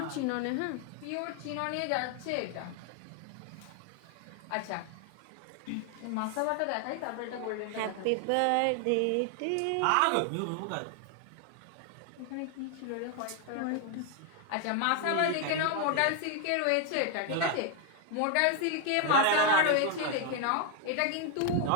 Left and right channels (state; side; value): different; both; correlation 0.00